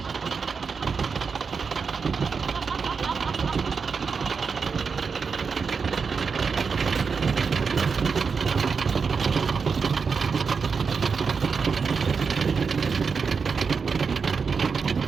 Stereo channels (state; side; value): quieter; left; 5.4 dB